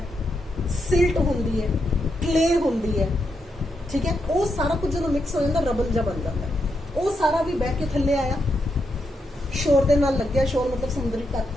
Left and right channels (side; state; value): both; normal; correlation 0.83